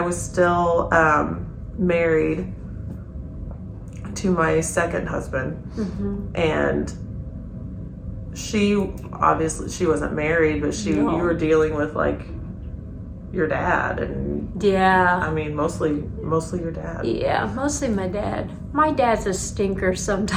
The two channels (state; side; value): identical; both; correlation 1.00